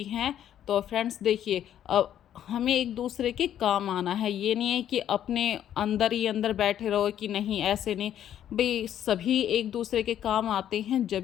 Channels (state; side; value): quieter; right; 10.6 dB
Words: हैं। तो फ्रेंड्स देखिए, अब हमें एक दूसरे के काम आना है। ये नहीं है कि अपने अंदर ही अंदर बैठे रहो कि नहीं, ऐसे नहीं भाई, सभी एक दूसरे के काम आते हैं जब